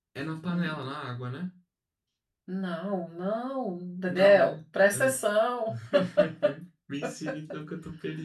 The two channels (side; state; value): both; identical; correlation 1.00